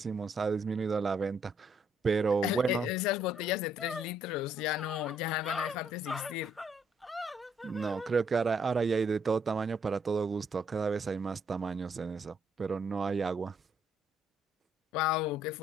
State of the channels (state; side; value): normal; both; correlation 0.69